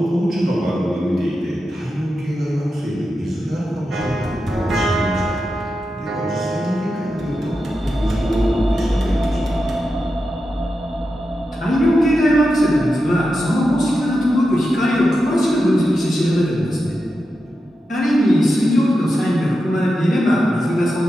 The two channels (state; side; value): normal; both; correlation 0.89